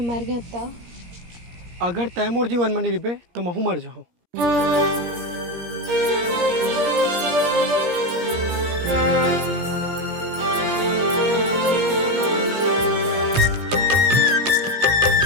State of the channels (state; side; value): late; left; 17 ms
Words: मर गया तो? अगर तय मोर जीवन में नहीं रिबे तो महू मर जाऊँ।